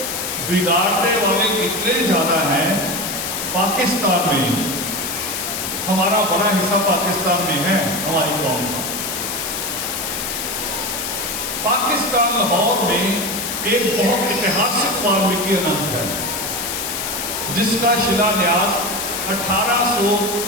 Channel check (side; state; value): left; noise; hiss, 3 dB below the sound